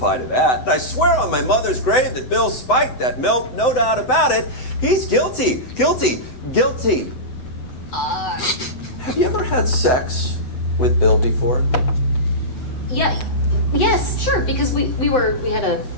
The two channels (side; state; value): right; late; 7.9 ms